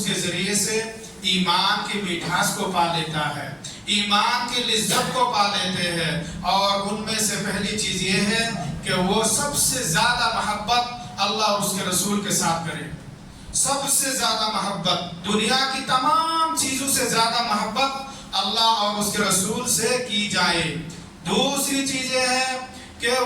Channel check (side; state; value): both; identical; correlation 1.00